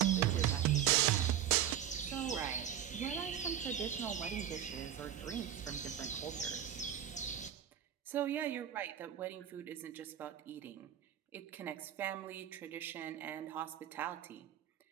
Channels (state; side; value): quieter; left; 10.3 dB